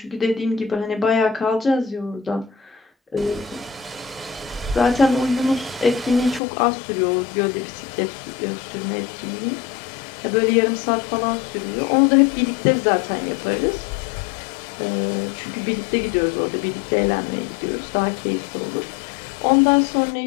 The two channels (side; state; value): right; drops out; at 6.4 s